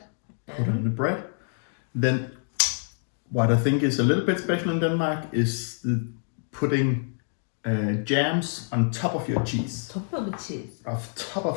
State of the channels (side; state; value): right; silent; 60 dB below the other